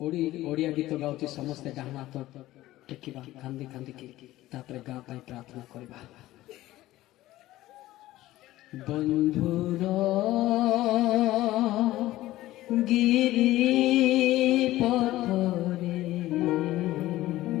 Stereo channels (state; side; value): quieter; right; 16.0 dB